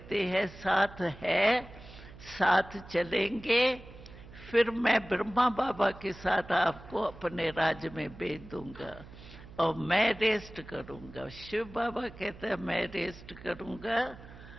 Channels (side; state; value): right; noise; hum, 18 dB below the sound